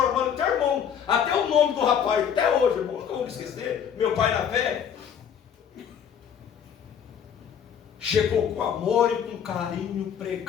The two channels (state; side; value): quieter; right; 8.2 dB